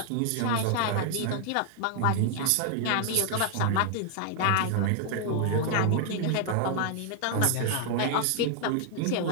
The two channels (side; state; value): both; different; correlation 0.00